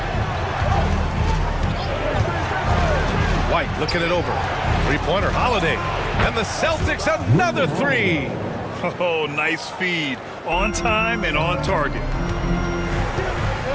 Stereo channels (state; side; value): identical; both; correlation 1.00